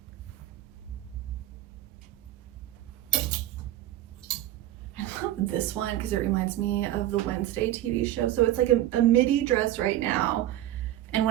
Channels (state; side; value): quieter; left; 13.8 dB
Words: I love this one because it reminds me of the Wednesday TV show. So it's like a midi dress right now. And